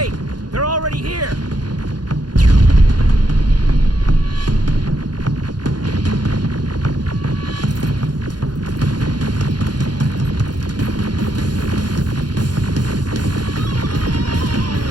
They're already here.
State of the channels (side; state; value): left; late; 0.70 ms